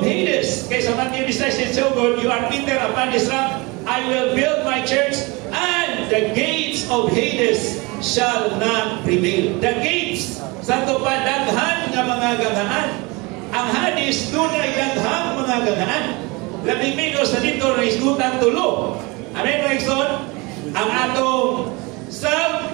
Kay sa Matthew 16:7, you are Peter, upon this rock I will build my church, and and the gates of Hades shall not prevail. The gates, sa ito pa, daghan nga mga gangaan. Ang Hades, doon ay daghang mga gangaan. Labing minus sa dito na isgutan tulo. Amen, mga igsoon? Ang atong self,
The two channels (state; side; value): quieter; left; 25.9 dB